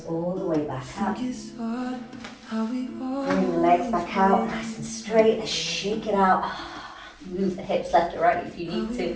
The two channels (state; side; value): identical; both; correlation 1.00